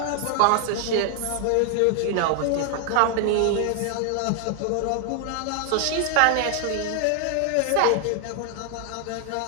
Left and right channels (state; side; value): different; both; correlation 0.00